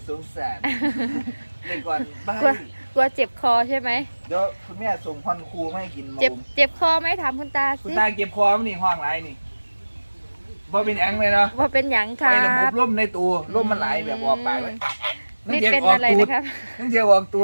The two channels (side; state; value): both; inverted; correlation -1.00